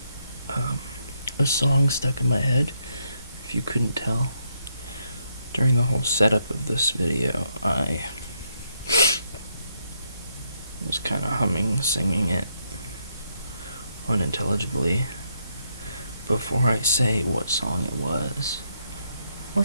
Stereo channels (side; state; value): both; inverted; correlation -0.77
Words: a song stuck in my head, if you couldn't tell. During the whole setup of this video, I was kind of humming, singing it unintelligibly. Before I say what song it was,